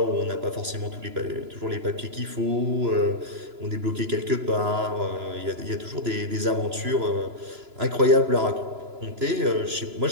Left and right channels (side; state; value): left; late; 2.9 ms